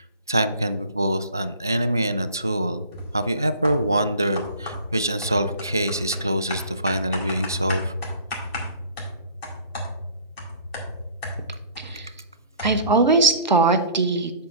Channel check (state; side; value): inverted; both; correlation -0.48